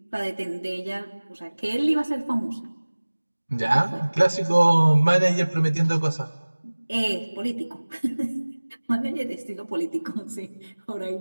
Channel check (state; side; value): inverted; both; correlation -1.00